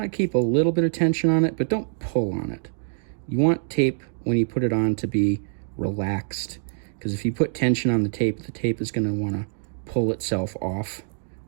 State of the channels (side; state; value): left; silent; digital silence